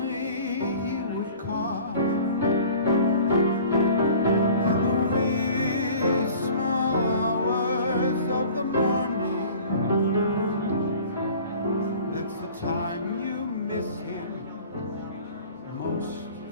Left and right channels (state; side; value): inverted; both; correlation -0.45